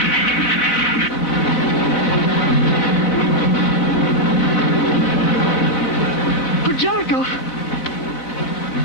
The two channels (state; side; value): late; right; 17 ms